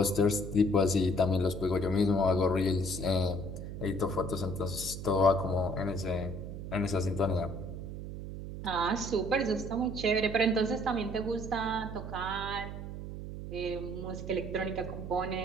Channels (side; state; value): right; noise; hum, 8 dB below the sound